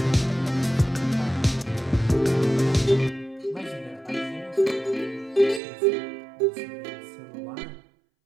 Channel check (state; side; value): drops out; left; at 5.6 s